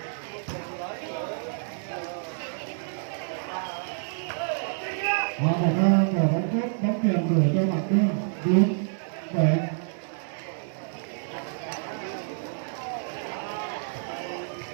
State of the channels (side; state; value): left; silent; 59 dB below the other